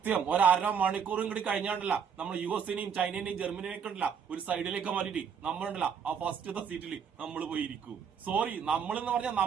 ഒരര മണിക്കൂറും കൂടി കഴിഞ്ഞാണ്ടല്ല നമ്മൾ US-നെയും ചൈനേനെയും ജർമ്മനിയെയും കണ്ടില്ല ഒരു സൈഡിലേക്ക് മാറ്റിട്ട് നമ്മളുണ്ടല്ല ആ ഫസ്റ്റത്തെ സീറ്റിൽ നമ്മൾ പോയിരിക്കും. സോറി, നമ്മളെന്ന് പറഞ്ഞാൽ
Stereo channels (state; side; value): quieter; left; 7.1 dB